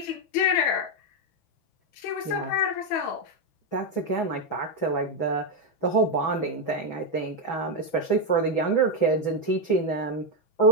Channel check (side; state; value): right; late; 6.1 ms